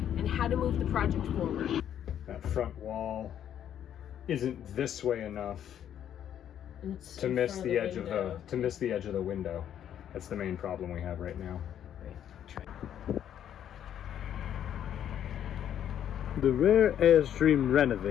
how to move the project forward. That front wall isn't this way enough to miss the edge of the window. That's the main problem we have right now. The rare Airstream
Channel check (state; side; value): quieter; right; 10.0 dB